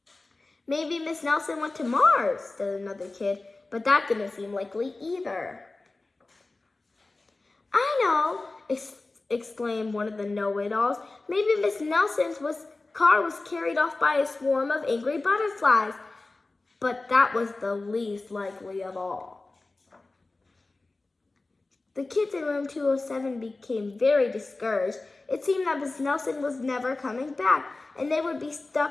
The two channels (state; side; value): quieter; right; 3.3 dB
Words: "Maybe Miss Nelson went to Mars," said another kid, but that didn't seem likely either. "I know," exclaimed one of the know-it-alls. "Maybe Miss Nelson's car was carried off by a swarm of angry butterflies." But that was the least likely of all. The kids in room 207 became very discouraged. It seemed that Miss Nelson was never coming back, and they would be